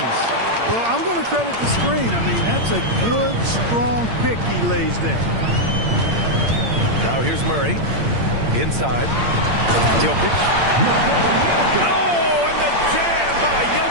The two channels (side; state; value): left; late; 8.7 ms